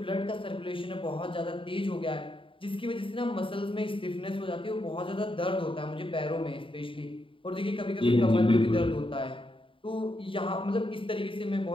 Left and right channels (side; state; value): right; late; 0.25 ms